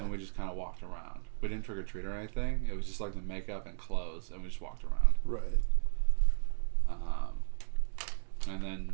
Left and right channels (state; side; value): silent; left; digital silence